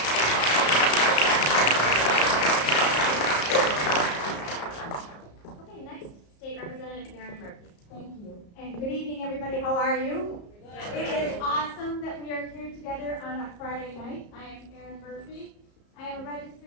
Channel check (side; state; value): right; late; 34 ms